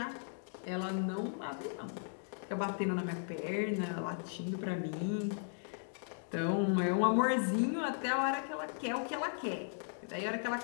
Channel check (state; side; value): silent; right; digital silence